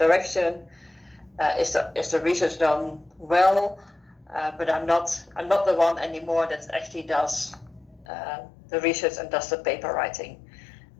Is the research done well? But I'm not the one anymore that actually does the research and does the paper writing.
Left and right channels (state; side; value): drops out; right; at 8.1 s